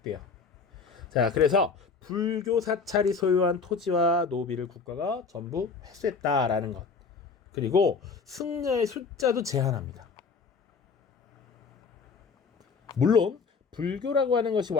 자, 그래서 불교 사찰이 소유한 토지와 노비를 국가가 전부 회수했다라는 것. 그리고 승려의 숫자도 제한합니다. 물론 불교라고 하는 것이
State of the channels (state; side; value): quieter; right; 5.0 dB